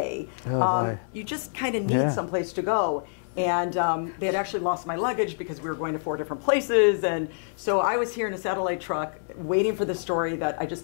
you just kind of need someplace to go. And they had actually lost my luggage because we were going to 4 different places. And so I was here in a satellite truck waiting for the story that I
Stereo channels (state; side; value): silent; right; 59 dB below the other